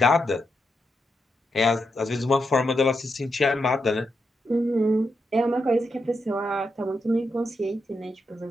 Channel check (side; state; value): both; normal; correlation 0.84